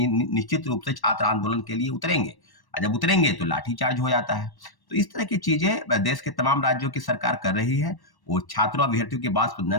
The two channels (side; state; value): right; late; 1.1 ms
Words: निश्चित रूप से छात्र आंदोलन के लिए उतरेंगे, और जब उतरेंगे तो लाठीचार्ज हो जाता है। तो इस तरह की चीज़ें देश के तमाम राज्यों की सरकार कर रही है। वो छात्रों अभ्यर्थियों की बात सुनना